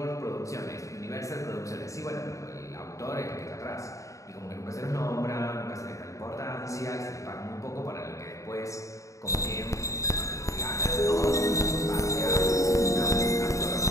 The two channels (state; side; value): late; right; 0.15 ms